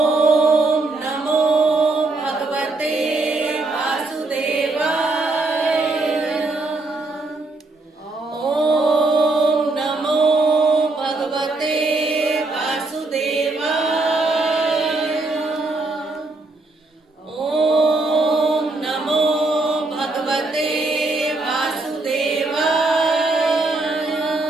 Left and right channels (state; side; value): quieter; left; 3.1 dB